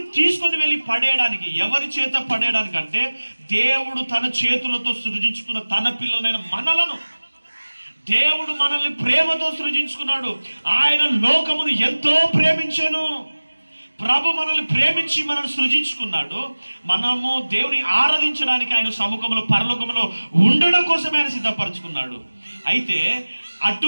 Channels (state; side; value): inverted; both; correlation -1.00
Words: తీసుకొని వెళ్ళి పడేయడానికి. ఎవరి చేత పడేయడానికి అంటే దేవుడు తన చేతులతో సృజించుకున్న తన పిల్లలైన మనలను దేవుడు మనల్ని ప్రేమతో సృజించుకున్నాడు. ఆయన లోకమును ఎంతో ప్రేమించెను. ప్రభు మనల్ని ప్రేమించి మనల్ని సృజించుకున్నాడు. మనము దేవుని ఆరాధించడానికి ఆయన సముఖంలో పరలోకంలో ఉండడం కోసమే ఆయన సిద్ధపరచుకున్నాడు. అయితే